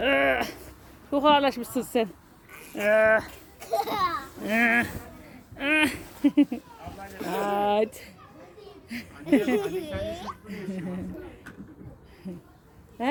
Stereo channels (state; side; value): identical; both; correlation 1.00